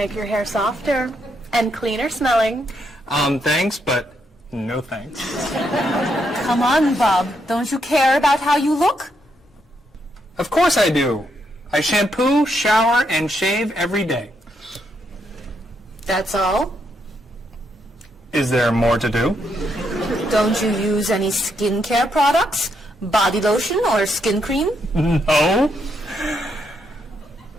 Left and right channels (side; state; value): both; normal; correlation 0.78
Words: your hair softer and cleaner smelling. Thanks, but no thanks. Come on, Bob. Don't you care about how you look? Of course I do. I shampoo, shower, and shave every day. That's all? Is there more to do? Don't you use any skincare products? Body lotion or skin cream? No.